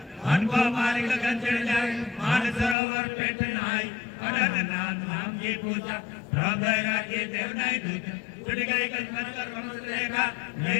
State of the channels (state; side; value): drops out; right; at 2.8 s